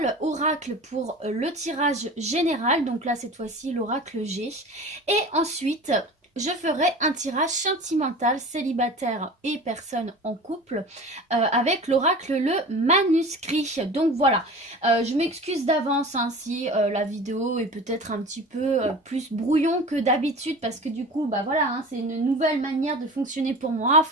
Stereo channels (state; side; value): normal; both; correlation 0.37